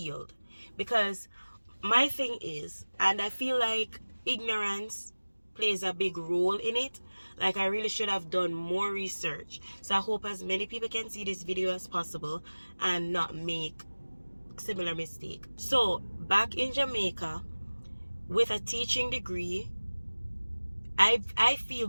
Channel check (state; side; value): inverted; both; correlation -1.00